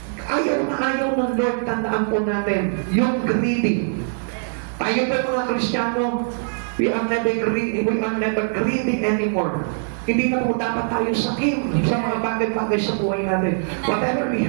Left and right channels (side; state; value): left; silent; 64 dB below the other